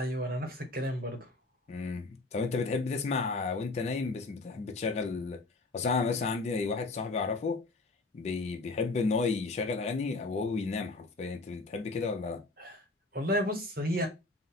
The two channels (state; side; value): quieter; right; 3.1 dB